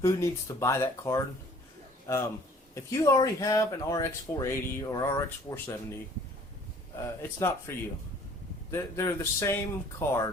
needs to buy that card. If you already have an RX 480 or RX 470, it's not for you. They're the same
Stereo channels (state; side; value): normal; both; correlation 0.53